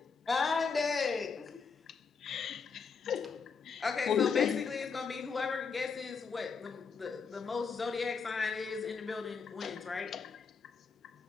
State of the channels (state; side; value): quieter; right; 5.5 dB